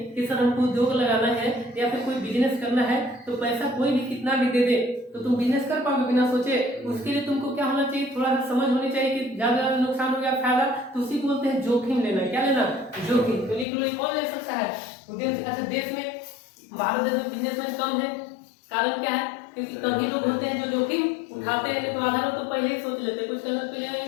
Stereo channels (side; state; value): right; drops out; at 13.7 s